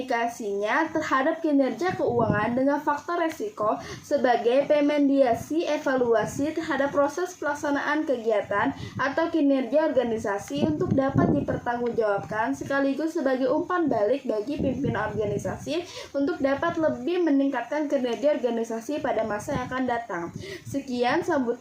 terhadap kinerja keuangan dengan faktor resiko sebagai pemediasi evaluasi terhadap proses pelaksanaan kegiatan atau kinerja organisasi untuk dapat dipertanggungjawabkan, sekaligus sebagai umpan balik bagi pimpinan organisasi untuk dapat lebih meningkatkan kinerja organisasi pada masa yang akan datang. Sekian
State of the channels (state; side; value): identical; both; correlation 1.00